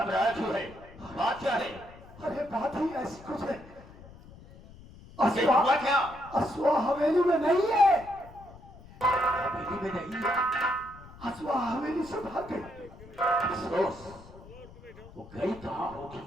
क्यों है? बात क्या है? अरे बात ही ऐसी कुछ है। ये हुआ क्या? असुआ हवेली में नहीं है। हवेली में नहीं है? असुआ हवेली से भाग गई। अफसोस, वो गई कहाँ होगी?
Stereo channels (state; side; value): noise; left; rumble, 20 dB below the sound